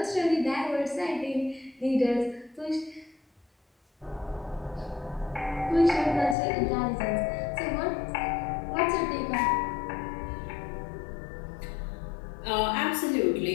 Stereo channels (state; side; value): drops out; right; at 6.4 s